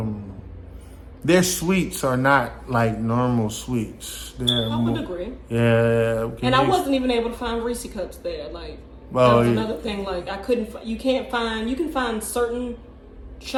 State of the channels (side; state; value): both; identical; correlation 1.00